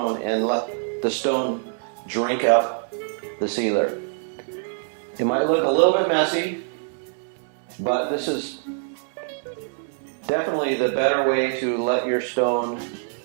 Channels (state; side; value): silent; left; 62 dB below the other